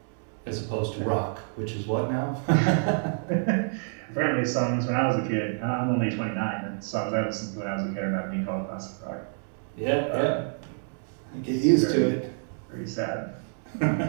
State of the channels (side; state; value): left; silent; digital silence